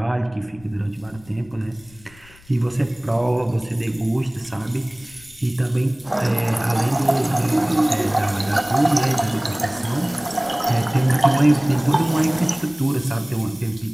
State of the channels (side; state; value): left; noise; rumble, 24 dB below the sound